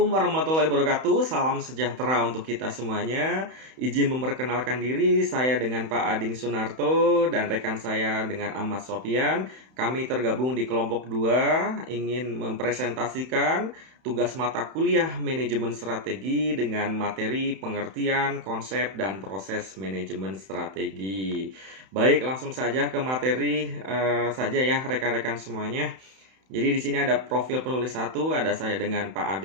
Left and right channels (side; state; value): left; late; 31 ms